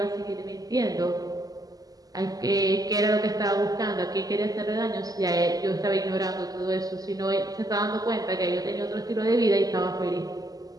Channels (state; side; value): late; left; 0.18 ms